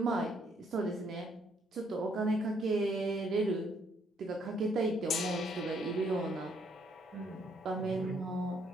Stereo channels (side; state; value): both; normal; correlation 0.69